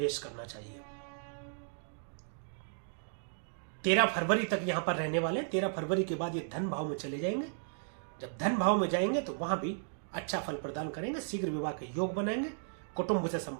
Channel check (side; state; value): left; silent; digital silence